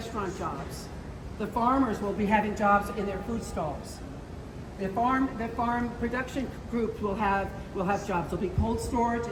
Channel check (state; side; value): identical; both; correlation 1.00